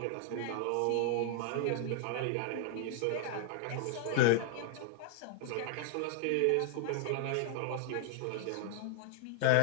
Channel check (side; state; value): both; different; correlation 0.00